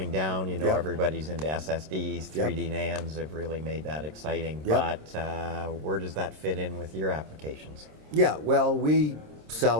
down. Yep. Everybody's into SSDs, 3D NANDs have really made that exciting. Yep. But where does that fit in with your applications? Yeah, well, we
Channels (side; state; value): left; late; 26 ms